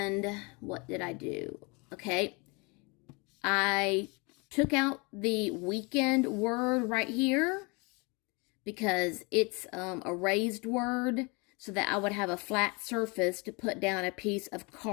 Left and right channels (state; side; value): quieter; right; 29.4 dB